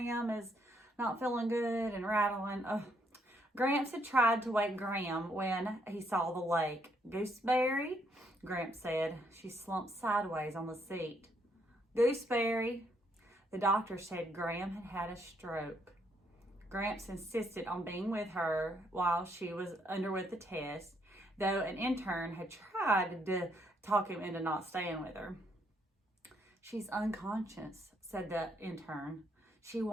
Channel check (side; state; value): both; normal; correlation 0.72